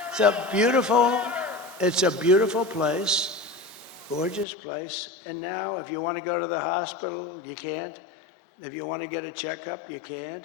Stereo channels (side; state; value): right; drops out; at 4.5 s